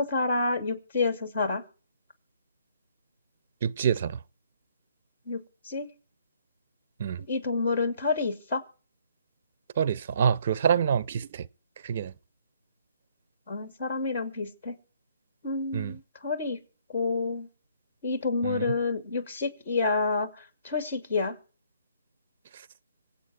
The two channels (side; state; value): both; inverted; correlation -0.64